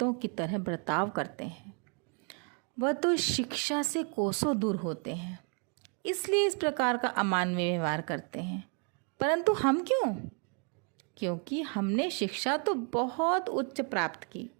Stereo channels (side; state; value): left; quieter; 39.7 dB